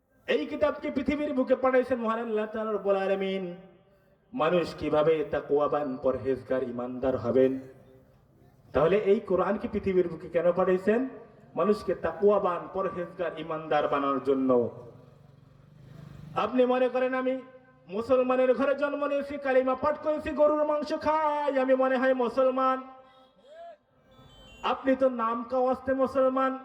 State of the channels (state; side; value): identical; both; correlation 1.00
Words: এই কিতাবকে পৃথিবীর বুকে পাঠাইছেন মহান আল্লাহ তাআলা রব্বুল আলামিন। মানুষ কিভাবে তাকওয়াবান, পরহেজগার, ঈমানদার হবেন। তাহলে এই কোরআন কি পৃথিবীর বুকে কেন পাঠাইছেন? মানুষকে তাকওয়াবান, পরহেজগার, ঈমানদার বানানোর জন্য। আপনি মনে করেন আমি মুসলমানের ঘরে জন্ম নিয়েছি, কালিমা পাঠ করেছি, গরুর মাংস খাই, আমি মনে হয় মুসলমান। আপনি তো নাম কাওয়াস্তে মুসলমান।